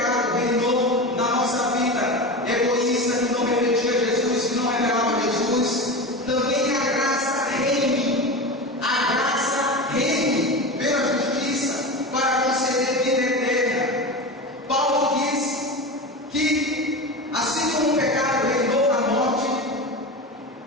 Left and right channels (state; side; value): normal; both; correlation 0.25